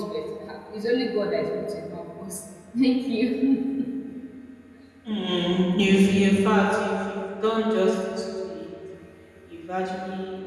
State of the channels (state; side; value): identical; both; correlation 1.00